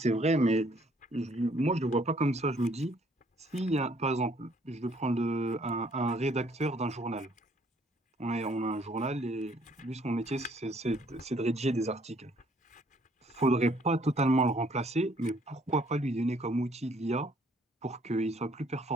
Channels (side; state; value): both; normal; correlation 0.63